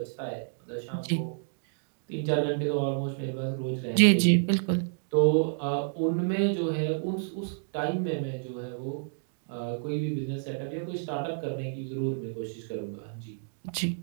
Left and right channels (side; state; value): left; silent; digital silence